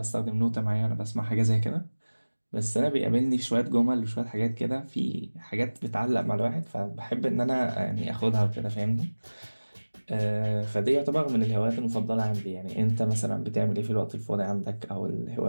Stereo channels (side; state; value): both; inverted; correlation -1.00